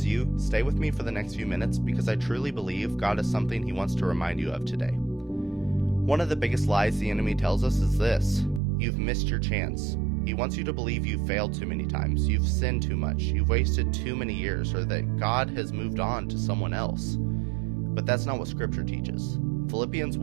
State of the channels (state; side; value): drops out; left; at 8.6 s